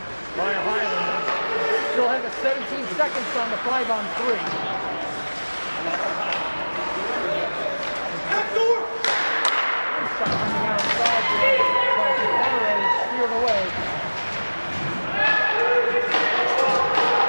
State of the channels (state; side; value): inverted; both; correlation -1.00